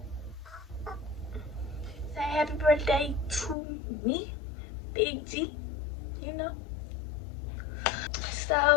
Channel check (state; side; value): drops out; right; at 3.6 s